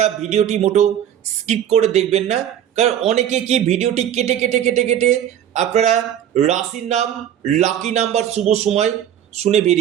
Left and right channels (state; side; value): quieter; left; 10.3 dB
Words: ভিডিওটি মোটেও স্কিপ করে দেখবেন না, কারণ অনেকে কি ভিডিওটি কেটে কেটে কেটে কেটে আপনারা রাশির নাম, লাকি নাম্বার, শুভ সময় শুনে